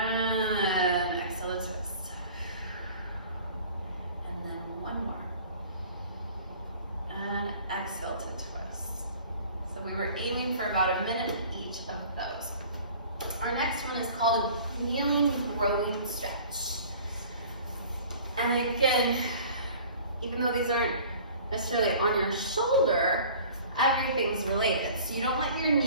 exhale and twist. And then one more. And exhale to twist. So we were aiming for about a minute each of those. Our next one is called a kneeling growing stretch. And again, even though these aren't necessarily on your shoulder, everything's related. So you don't let your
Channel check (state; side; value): inverted; both; correlation -0.47